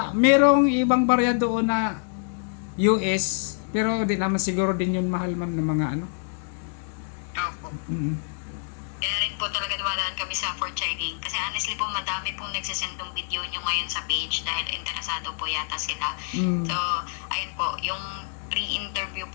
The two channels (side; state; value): right; silent; digital silence